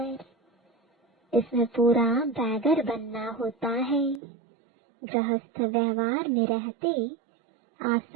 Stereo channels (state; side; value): drops out; left; at 4.2 s